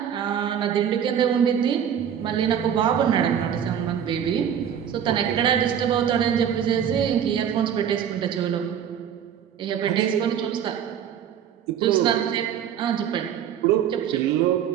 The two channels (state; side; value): quieter; left; 8.9 dB